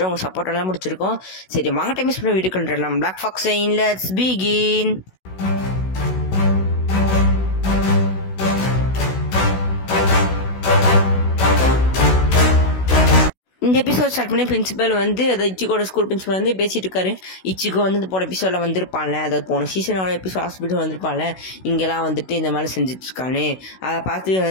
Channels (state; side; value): late; right; 16 ms